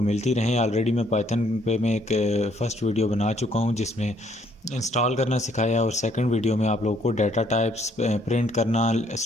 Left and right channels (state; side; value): normal; both; correlation 0.66